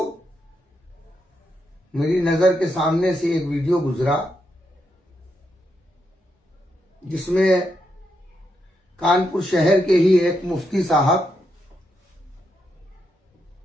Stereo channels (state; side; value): normal; both; correlation 0.81